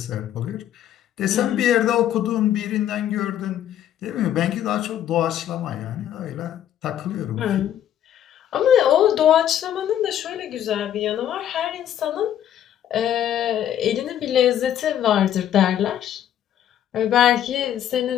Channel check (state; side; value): quieter; right; 10.8 dB